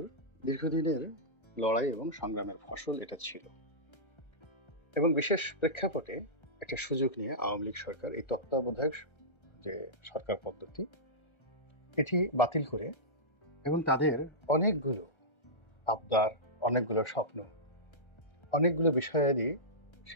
দীর্ঘদিনের লড়াই এবং সংগ্রামের ফসল এটা ছিল। এবং বিশেষ প্রেক্ষাপটে একটা সুযোগ নিয়ে আওয়ামী লীগ সরকার এই তত্ত্বাবধায়ক যে সরকার পদ্ধতি এটি বাতিল করে এবং তাদের অনেকগুলো আবদার, অনেকগুলো স্বপ্ন, অনেকগুলো বিষয়াদি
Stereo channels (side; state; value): right; late; 1.3 ms